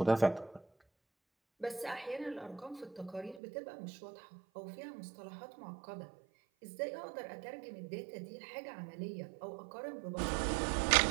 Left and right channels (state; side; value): drops out; left; at 3.4 s